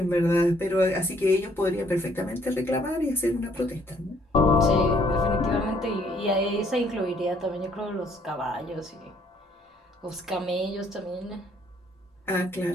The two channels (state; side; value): normal; both; correlation 0.65